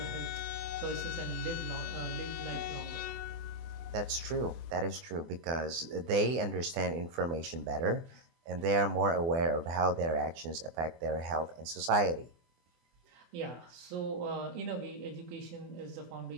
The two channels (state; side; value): late; left; 24 ms